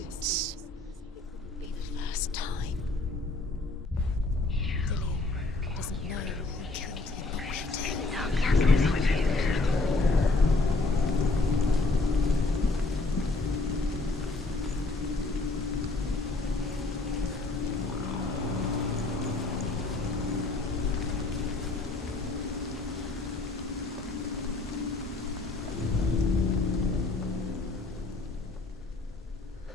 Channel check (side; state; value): right; quieter; 3.2 dB